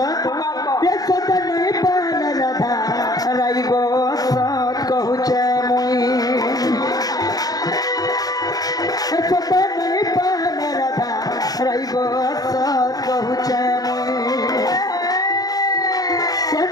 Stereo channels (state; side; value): late; right; 0.18 ms